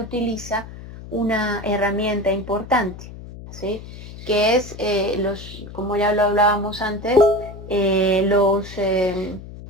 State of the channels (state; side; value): noise; left; hum, 14 dB below the sound